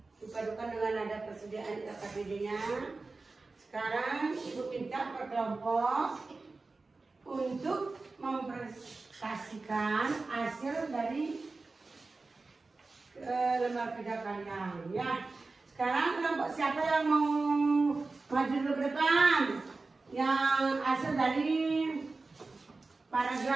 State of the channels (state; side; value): quieter; left; 3.7 dB